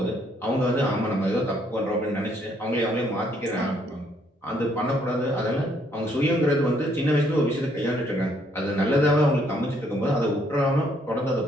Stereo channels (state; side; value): normal; both; correlation 0.68